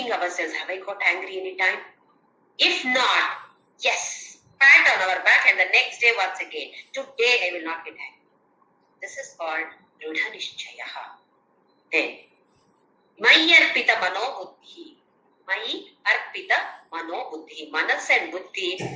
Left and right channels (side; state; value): both; identical; correlation 1.00